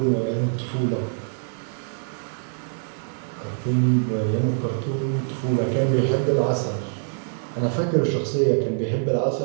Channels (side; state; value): left; silent; digital silence